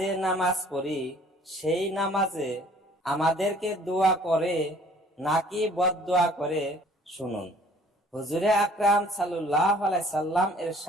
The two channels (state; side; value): normal; both; correlation 0.55